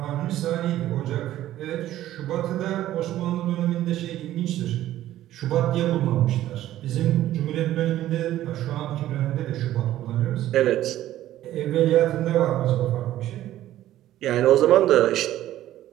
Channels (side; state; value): left; quieter; 13.6 dB